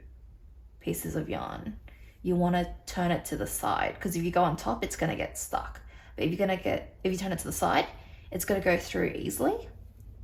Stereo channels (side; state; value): both; identical; correlation 1.00